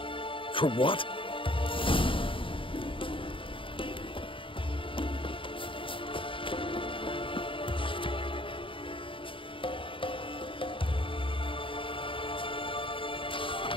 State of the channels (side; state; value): right; late; 0.25 ms